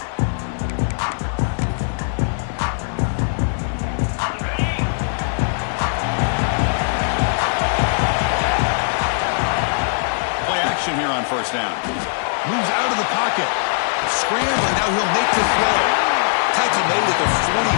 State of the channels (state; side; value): silent; right; 62 dB below the other